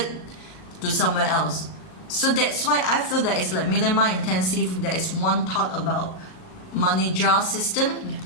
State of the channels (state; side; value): late; right; 38 ms